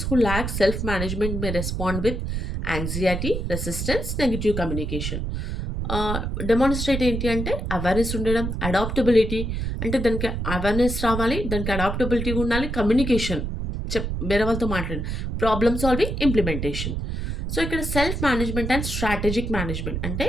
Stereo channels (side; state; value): right; noise; rumble, 3 dB below the sound